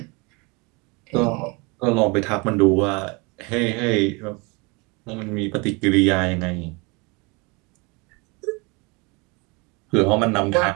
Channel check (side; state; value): left; quieter; 28.4 dB